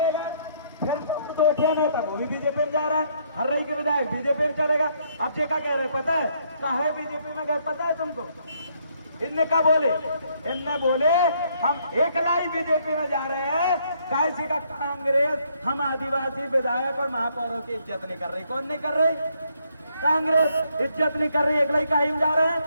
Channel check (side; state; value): both; inverted; correlation -0.70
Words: फिर नेता वो भी बीजेपी में जा रहा है, हर्रई के विधायक बीजेपी में चलेगा। अब जे का कह रहे पता है, काहे बीजेपी में गए पता है तुमको? इनने क्या बोले? इनने बोले हम एकला ही बीजेपी में जा रहे हैं, कैसी का कांग्रेस हम आदिवासी विधायक और महापौरों की इज्जत नहीं कर रही। कौन नहीं कर रही? कांग्रेस इज्जत नहीं कर रही, एकला ही काहे में जा रहे